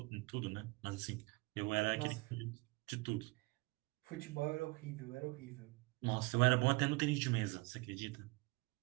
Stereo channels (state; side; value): quieter; left; 25.8 dB